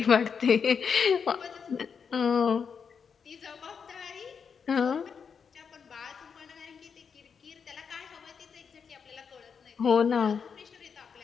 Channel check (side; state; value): right; quieter; 6.4 dB